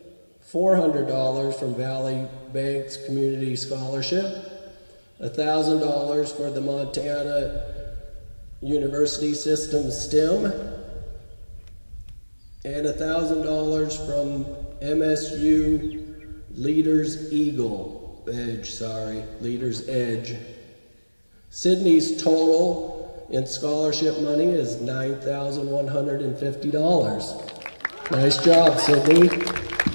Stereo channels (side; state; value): both; inverted; correlation -1.00